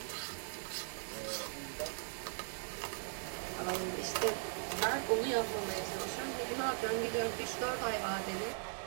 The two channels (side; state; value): left; silent; digital silence